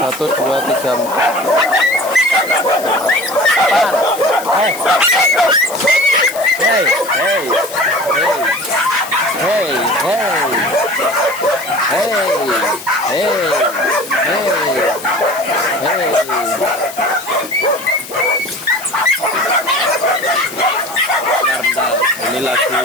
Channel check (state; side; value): noise; left; hiss, 13 dB below the sound